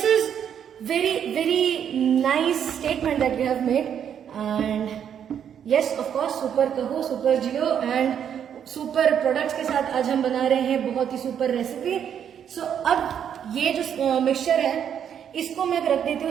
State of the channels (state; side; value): quieter; left; 8.7 dB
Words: is very nice statement that we have made, and yes of course, super कहो सुपर जियो, एंड सुपर प्रोडक्ट्स के साथ आज हम बना रहे हैं बहुत ही सुपर रेसिपी। सो अब ये जो मिक्सचर है इसको मैं रख देती हूँ